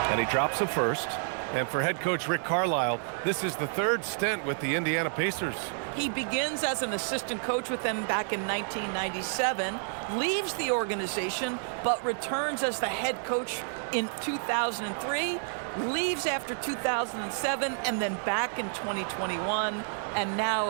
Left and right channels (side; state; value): left; silent; digital silence